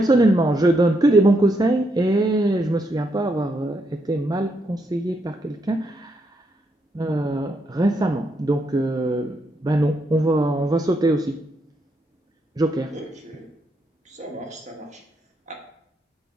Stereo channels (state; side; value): normal; both; correlation 0.78